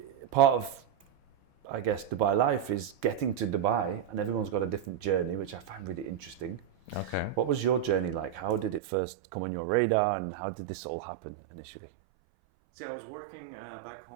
part of, I guess, Dubai Life is getting to Dubai, and everyone's got a different journey, which I find really interesting. Okay. What was your journey like? How did it first come on your radar and how did this all happen initially? See, I was working back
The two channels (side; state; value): left; drops out; at 8.8 s